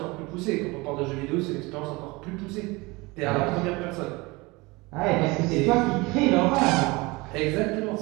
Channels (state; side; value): quieter; left; 24.0 dB